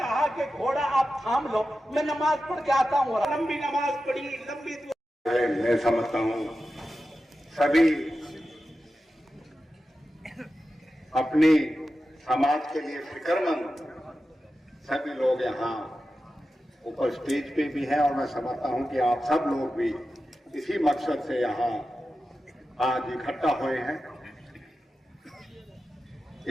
कि घोड़ा आप थाम लो, मैं नमाज पढ़ के आता हूँ। लंबी नमाज पढ़ी, लंबी मैं समझता हूँ सभी अपनी समाज के लिए फिक्रमंद सभी लोग यहाँ ऊपर स्टेज पे भी हैं, और मैं समझता हूँ कि आप सब लोग भी इसी मकसद से यहाँ आज इकट्ठा हुए हैं।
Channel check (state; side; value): normal; both; correlation 0.92